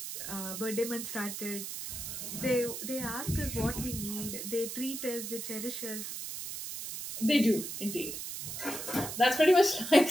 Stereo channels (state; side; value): noise; right; hiss, 7 dB below the sound